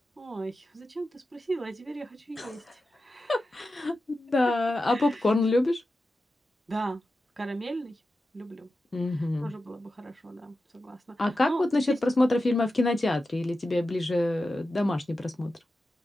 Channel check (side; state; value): both; normal; correlation 0.92